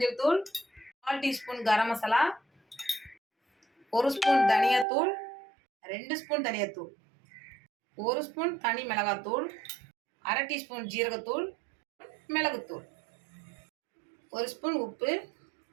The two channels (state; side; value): drops out; left; at 4.9 s